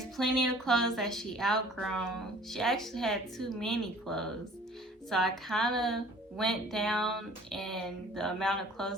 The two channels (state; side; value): normal; both; correlation 0.51